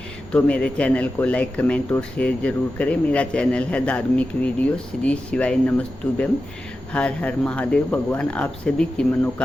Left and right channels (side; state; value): both; normal; correlation 0.92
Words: तो मेरे चैनल को लाइक, कमेंट और शेयर जरूर करें। मेरा चैनल है धार्मिक वीडियो। श्री शिवाय नमस्तुभ्यम। हर हर महादेव। भगवान आप सभी की